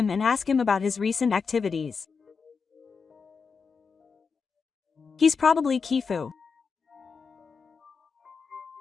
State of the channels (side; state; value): right; quieter; 5.4 dB